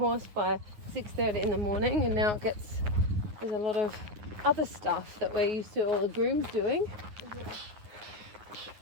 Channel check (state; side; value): late; left; 9.6 ms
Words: by 6:30 in the morning, and now there's a lot of other stuff that we're used to all the grooms doing. Yeah.